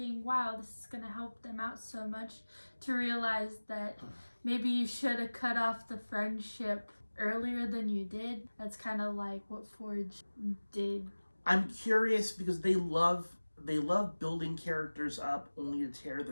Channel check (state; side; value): inverted; both; correlation -1.00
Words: wow, this is going to help them out so much, to realize that maybe you should have cut off the friendship earlier than you did? That's kind of like what Forge did. I'm curious because they love building characters up only to tear